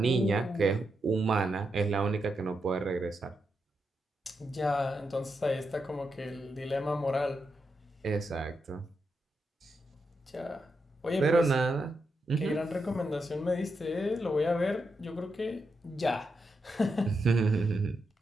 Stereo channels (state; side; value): normal; both; correlation 0.85